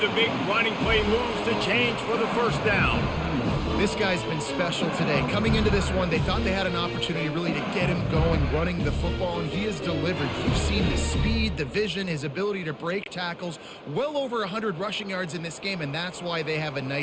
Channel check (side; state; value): both; identical; correlation 1.00